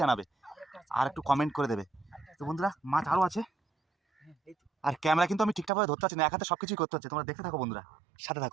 জানাবে, আর একটু কমেন্ট করে দেবে। তো বন্ধুরা মাছ আরও আছে, হ্যাঁ, এই তো। আর ক্যামেরা কিন্তু আমি ঠিকঠাকভাবে ধরতে পারছি না, এক হাতে সব কিছুই করতে হচ্ছে। তোমরা দেখতে থাকো বন্ধুরা, সাথে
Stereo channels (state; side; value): drops out; left; at 5.7 s